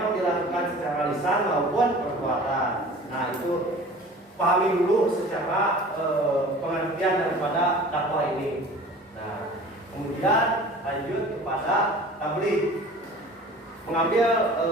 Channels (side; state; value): both; normal; correlation 0.43